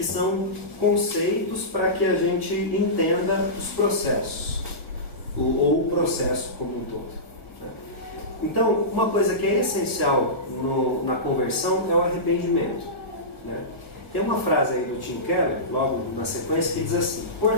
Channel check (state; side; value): late; right; 1.5 ms